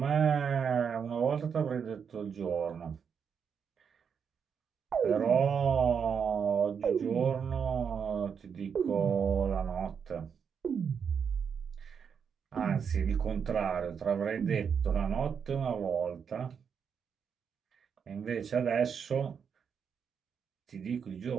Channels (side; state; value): left; quieter; 6.9 dB